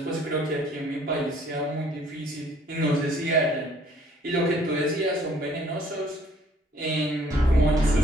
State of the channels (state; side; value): normal; both; correlation 0.60